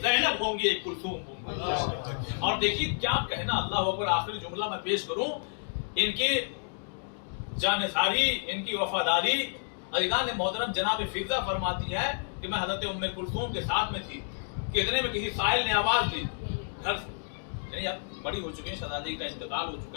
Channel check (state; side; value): silent; right; digital silence